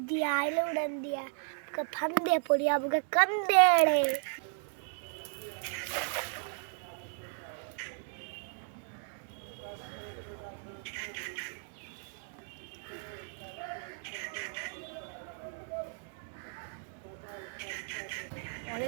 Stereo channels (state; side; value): silent; left; 55 dB below the other